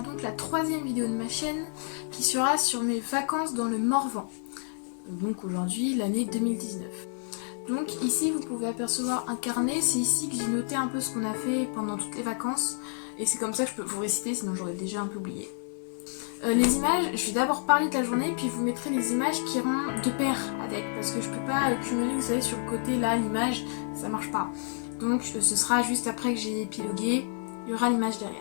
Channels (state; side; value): silent; right; 58 dB below the other